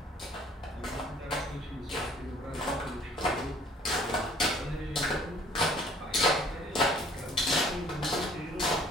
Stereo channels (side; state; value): both; normal; correlation 0.56